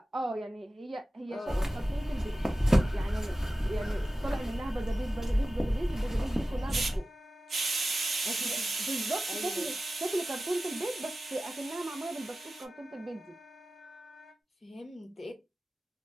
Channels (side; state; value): both; normal; correlation 0.95